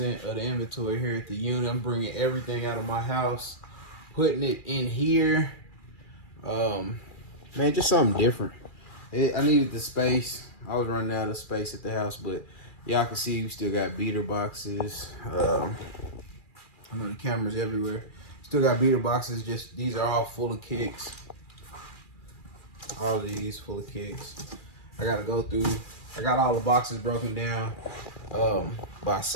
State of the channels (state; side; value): late; right; 2.4 ms